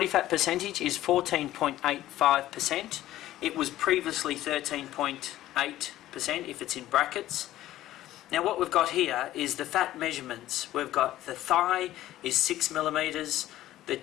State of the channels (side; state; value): right; quieter; 14.4 dB